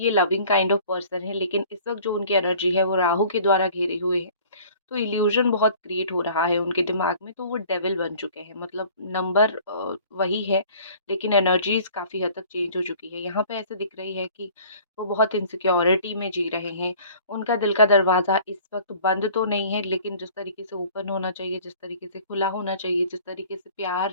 लविंग काइंड ऑफ पर्सन है, लेकिन इस वक्त जो उनकी एनर्जी है वो राहु के द्वारा घेरे हुए है। तो इल्यूजन बहुत क्रिएट हो रहा है उनके दिमाग में, तो वो डेविल बन चुके हैं। मतलब नंबर वही है, लेकिन एनर्जीज काफ़ी हद तक चेंज हो चुकी है। यहाँ पे ऐसे दिख रही है कि वो बहुत इनसिक्योरिटी में जी रहे हैं। उनका दिल का दरवाज़ा इस वक्त बंद तो नहीं है, लेकिन जिस तरीके से ओपन होना चाहिए, जिस तरीके से खुला होना चाहिए, जिस तरीके से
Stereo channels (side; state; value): both; inverted; correlation -0.50